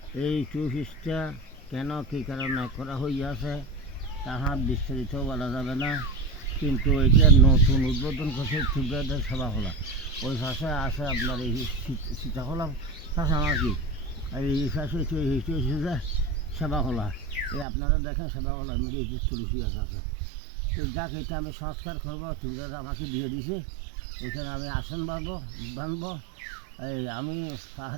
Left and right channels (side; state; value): left; drops out; at 17.7 s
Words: এই কোর্সটা কেন কী কারণে করা হইয়াছে তাহা বিস্তারিত বলা যাবে না, কিন্তু এটা নতুন উদ্বোধন করছে ত্রিপুরাদের সভাখোলা। ওই পাশে আছে আপনার এই সীতাখোলা পাশে আমার কি এই পাশে যে সেবাখোলা, এই আপনারা দেখেন সেবাখোলার মধ্যে এই যে তুলসী গাছ আছে। তো যাক, এটা আমি সংস্কার করবো, ত্রিপুরারা আমাকে দিয়ে দিছে। এখানে আমি আসন বানবো। এই আমি